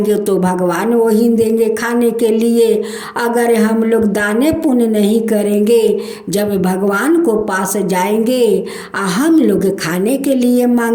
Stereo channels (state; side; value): identical; both; correlation 1.00